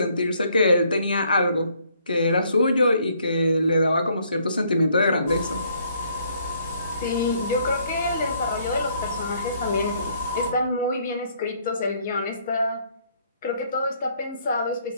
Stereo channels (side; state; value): both; inverted; correlation -0.66